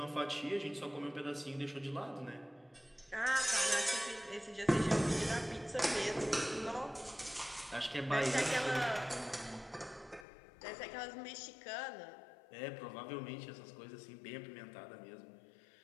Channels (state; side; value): drops out; right; at 10.2 s